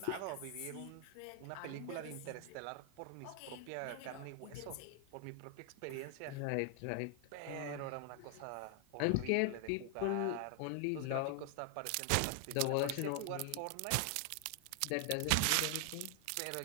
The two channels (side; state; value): both; different; correlation 0.00